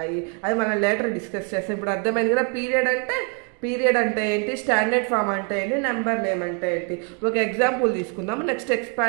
అది మనం లేటర్ డిస్కస్ చేస్తాం. ఇప్పుడు అర్థమైంది కదా పీరియడ్ అంటే ఏంటి, స్టాండర్డ్ ఫామ్ అంటే ఏంటి, నెంబర్ నేమ్ అంటే ఏంటి. ఒక ఎగ్జాంపుల్ తీసుకుందాము. నెక్స్ట్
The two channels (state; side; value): quieter; left; 39.3 dB